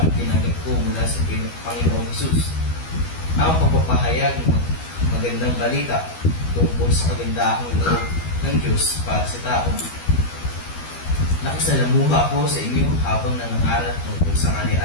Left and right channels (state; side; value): late; right; 12 ms